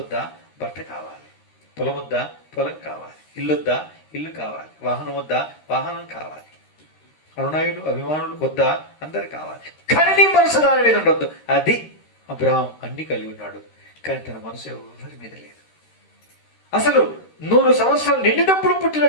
వద్దా, భర్త కావాలి. పొలం వద్దా, పొలం కావాలి. ఇల్లు వద్దా, ఇల్లు కావాలి. వాహనం వద్దా, వాహనం కావాలి. అనునాయులు అభిమానులు వద్దా, అందరు కావాలి. కానీ నీ మనసు దాని మీద ఉండొద్దు. అది అబ్రహాం అన్ని కలిగి ఉన్నాడు, కానీ తన మనసు ఎవరి మీద లేదు. అసలు 100 సంవత్సరాలు నిండినప్పుడు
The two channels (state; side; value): late; right; 13 ms